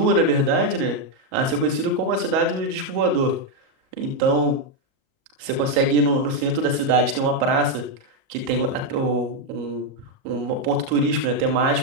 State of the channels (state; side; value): late; left; 38 ms